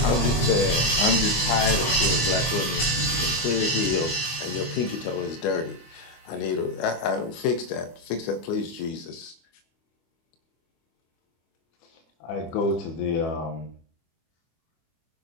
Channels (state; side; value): late; right; 25 ms